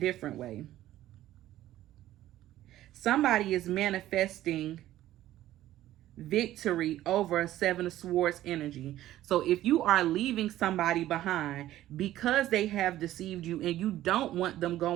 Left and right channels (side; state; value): left; quieter; 14.0 dB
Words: way. Somebody is manifesting victory over a Seven of Swords energy. So if you are leaving somebody behind because they have deceived you and you don't want them